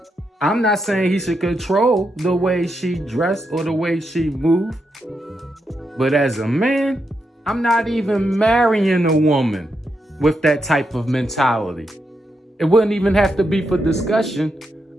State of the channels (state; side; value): normal; both; correlation 0.83